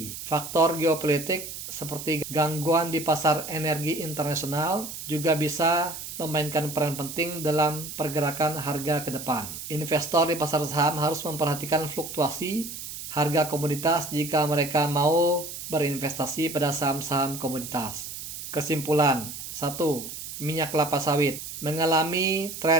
Faktor geopolitik seperti gangguan di pasar energi internasional juga bisa memainkan peran penting dalam pergerakan harga ke depan. Investor di pasar saham harus memperhatikan fluktuasi harga komoditas jika mereka mau berinvestasi pada saham-saham komoditas. Kesimpulan: 1. Minyak kelapa sawit mengalami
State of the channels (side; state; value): right; noise; hiss, 9 dB below the sound